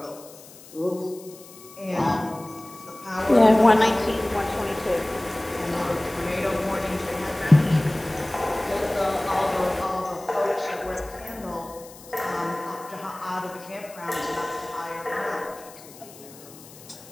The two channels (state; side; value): noise; left; hiss, 20 dB below the sound